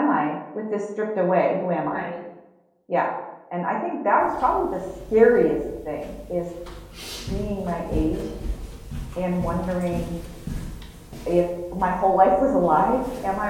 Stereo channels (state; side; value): identical; both; correlation 1.00